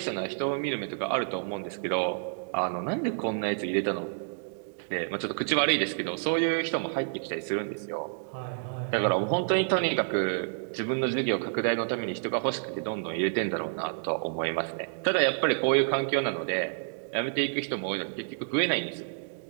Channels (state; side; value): silent; left; digital silence